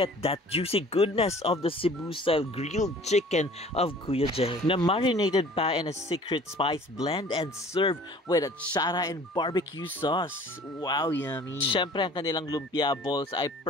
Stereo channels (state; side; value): normal; both; correlation 0.49